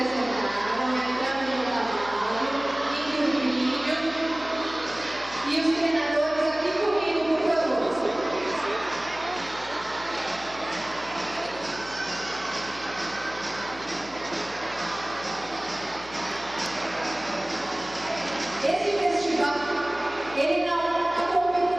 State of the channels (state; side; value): noise; left; hum, 19 dB below the sound